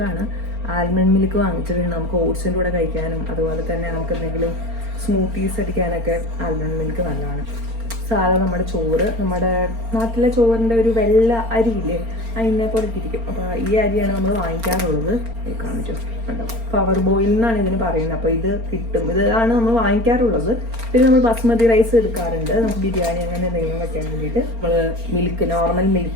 ആൽമണ്ട് മിൽക്ക് വാങ്ങിച്ചിട്ടുണ്ട്. നമുക്ക് ഓട്സിൻ്റെ കൂടെ കഴിക്കാനും അതുപോലെ തന്നെ നമുക്ക് എന്തെങ്കിലും സ്മൂത്തീസ് അടിക്കാനൊക്കെ ആൽമണ്ട് മിൽക്ക് നല്ലതാണ്. സാധാ നമ്മുടെ ചോറ്, നമ്മുടെ നാട്ടിലെ ചോറിൻ്റെ ഒരു വെള്ള അരിയില്ലേ, അതിനെ പോലെ ഇരിക്കും. അപ്പോൾ ഈ അരിയാണ് നമ്മൾ വാങ്ങിക്കാറുള്ളത്. കാണിച്ചു കണ്ടോ, പവർ ബോയിൽ എന്നാണ് ഇതിന് പറയുന്നത്. അപ്പോൾ ഇത് കിട്ടും, ഇതാണ് നമ്മൾ വാങ്ങിക്കാറുള്ളത്. പിന്നെ നമ്മൾ ബസ്മതി റൈസ് എടുക്കാറുണ്ട്, നമുക്ക് ബിരിയാണി അങ്ങനെ എന്തെങ്കിലും വെക്കാൻ വേണ്ടിയിട്ട്. നമ്മൾ മിൽക്ക്, നോർമൽ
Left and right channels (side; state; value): left; late; 4.4 ms